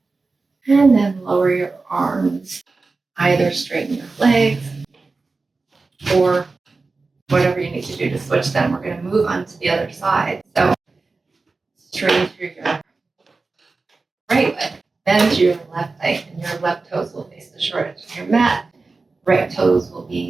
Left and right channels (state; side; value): quieter; left; 3.9 dB